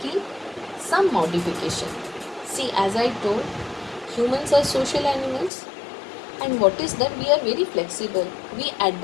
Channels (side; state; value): right; drops out; at 5.5 s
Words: some modification. See, as I told, humans are social animals, and what is that? We are very flexible. We